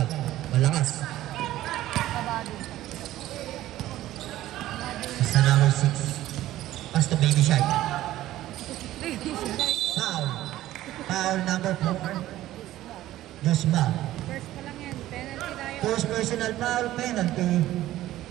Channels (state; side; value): quieter; left; 14.7 dB